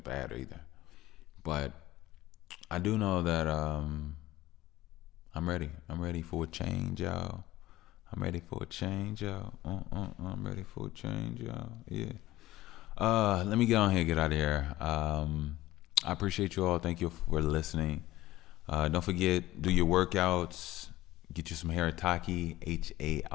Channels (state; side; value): quieter; right; 16.6 dB